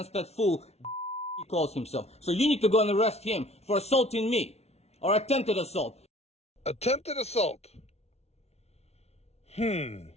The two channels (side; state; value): right; late; 0.31 ms